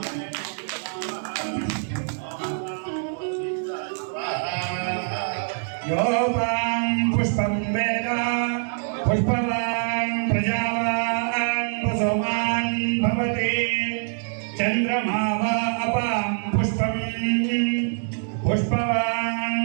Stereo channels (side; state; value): left; silent; digital silence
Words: పుష్పం వేద పుష్పవాన్ ప్రజావాన్ వసోమాన్ భవతి చంద్రమా వా అపాం పుష్పం పుష్పవాన్